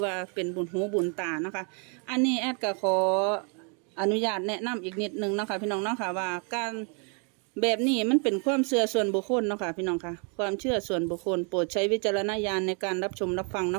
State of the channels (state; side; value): quieter; left; 37.5 dB